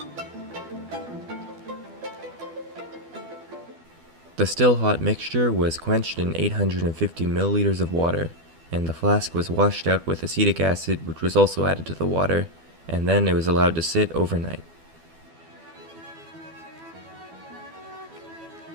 The still hot mixture was quenched in 850 milliliters of water, and the flask was washed out with acetic acid, which was also added to the water, and then it was allowed to sit overnight.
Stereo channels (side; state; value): left; late; 12 ms